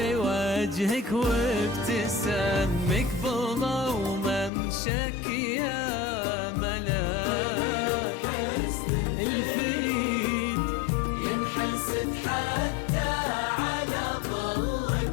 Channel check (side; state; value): right; drops out; at 4.5 s